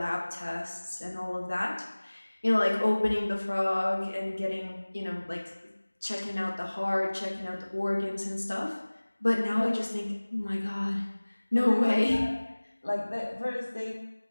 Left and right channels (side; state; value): both; inverted; correlation -1.00